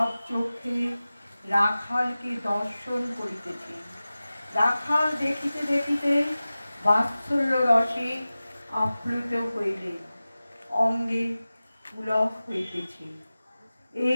চোখে রাখালকে দর্শন করিতেছে। রাখাল দেখিতে দেখিতে বাৎসল্য রসে আপ্লুত হইলে অঙ্গে পুলক হইতেছে।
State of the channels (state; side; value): inverted; both; correlation -0.96